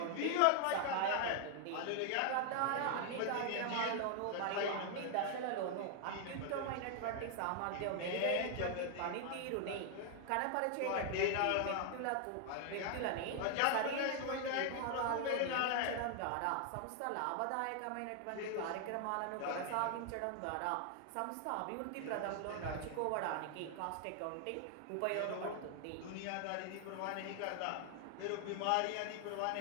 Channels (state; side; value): different; both; correlation 0.00